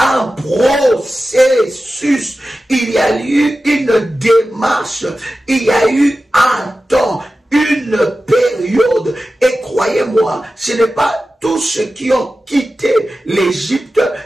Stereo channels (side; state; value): both; normal; correlation 0.94